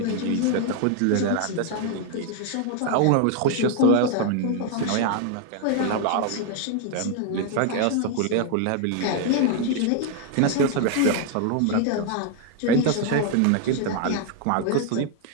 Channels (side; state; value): both; different; correlation 0.01